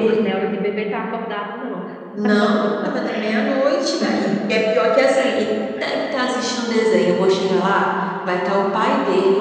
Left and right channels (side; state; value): both; identical; correlation 1.00